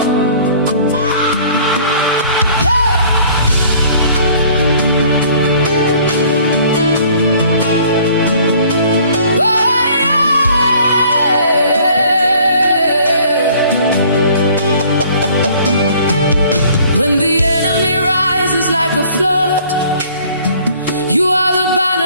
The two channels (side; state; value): both; inverted; correlation -0.54